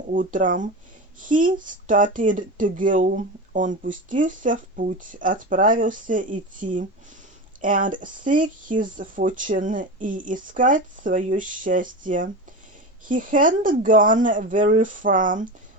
утром, he started to go, он пустился в путь, отправился идти. And seek his fortune, и искать свое счастье. He hadn't gone very far,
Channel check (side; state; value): both; normal; correlation 0.24